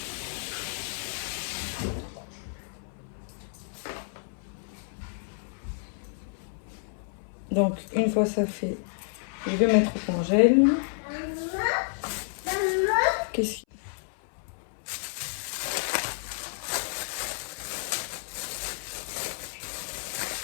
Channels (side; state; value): right; silent; 58 dB below the other